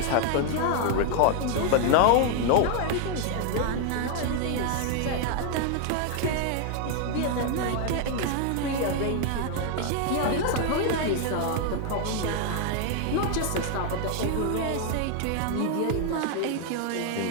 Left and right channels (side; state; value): both; different; correlation 0.00